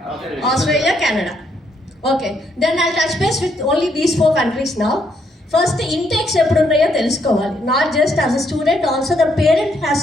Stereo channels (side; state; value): both; normal; correlation 0.73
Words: Australia, Canada. Okay, then I'll touch base with only these 4 countries now. First, intakes eppudu unnayo telusukovali. Not just as a student, also the parent has